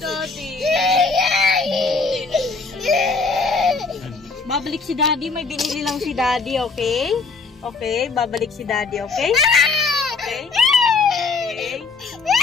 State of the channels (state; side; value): quieter; right; 4.3 dB